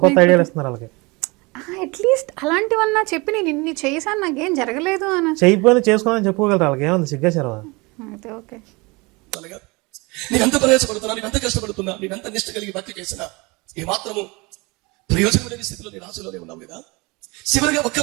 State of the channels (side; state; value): left; quieter; 26.0 dB